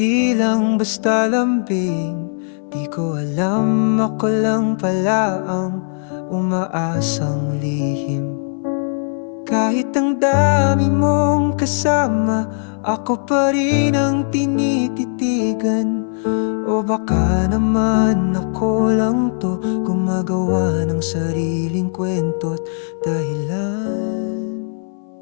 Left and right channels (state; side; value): silent; right; 60 dB below the other